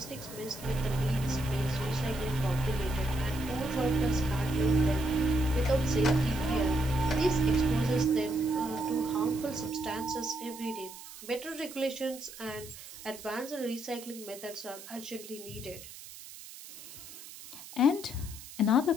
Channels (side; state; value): right; noise; hiss, 15 dB below the sound